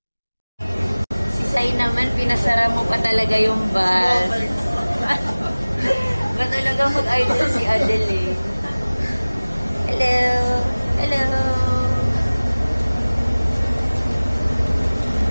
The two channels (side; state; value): both; inverted; correlation -1.00